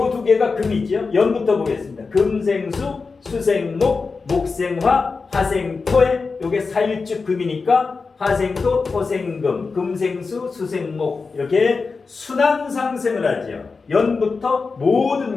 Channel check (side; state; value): right; quieter; 4.5 dB